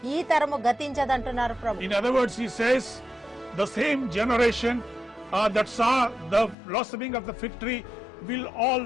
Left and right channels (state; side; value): drops out; right; at 6.6 s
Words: ఈ తరము గతించదంటున్నారు ప్రభు. In other words, he says the same generation that saw the blossoming of the fig tree